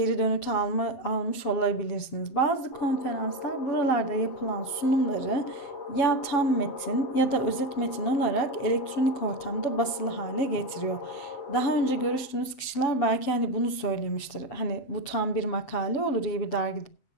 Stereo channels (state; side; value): late; right; 7.8 ms